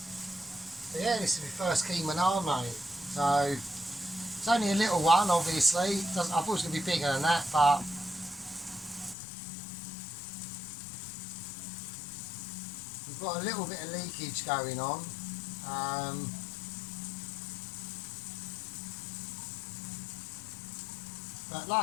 So yeah, this is my first Keema naan, mate. So it's only a little one, obviously. I thought it was going to be bigger than that, but we've got a little bit of leakage going on. But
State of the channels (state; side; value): drops out; right; at 9.2 s